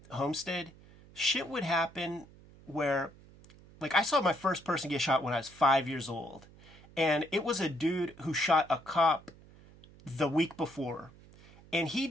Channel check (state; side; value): noise; right; hum, 23 dB below the sound